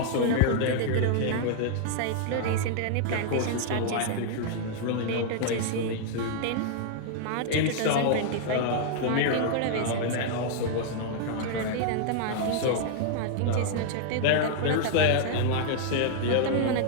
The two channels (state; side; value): different; both; correlation 0.00